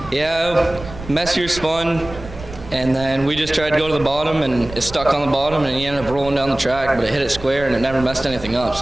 Yeah, messier spun, and then we just tried to go to the bottom, and it stuck on the bottom, and he ended up rolling down the track, but it hit it square, and it never messed anything up,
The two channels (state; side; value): noise; right; rumble, 14 dB below the sound